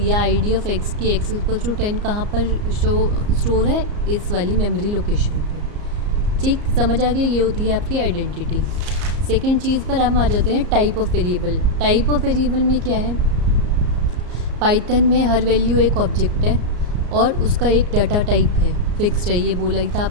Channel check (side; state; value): left; late; 34 ms